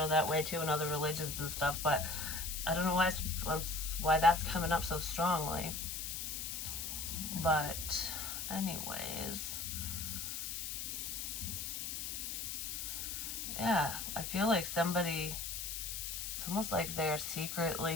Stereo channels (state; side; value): noise; left; hiss, 4 dB below the sound